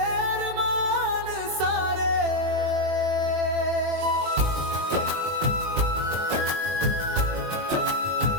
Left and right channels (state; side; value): late; left; 21 ms